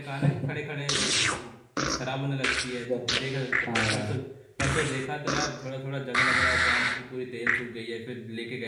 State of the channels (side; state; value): both; identical; correlation 1.00